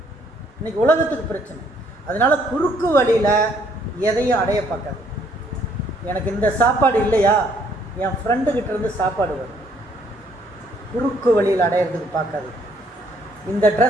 இன்னைக்கு உலகத்துக்கு பிரச்சனை. அதனால குறுக்கு வழியில் எதையும் அடைய பார்க்காது. எனக்கு இந்த சாப்பாடு இல்லையா, என் ஃப்ரெண்டுக்கிட்ட இருந்து சாப்பாடு வரும். குறுக்கு வழியில் அடையிறதுக்கு பார்க்காது. இந்த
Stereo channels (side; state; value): both; normal; correlation 0.66